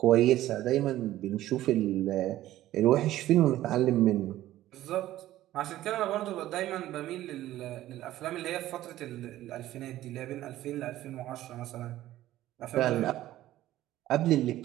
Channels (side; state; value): left; quieter; 14.4 dB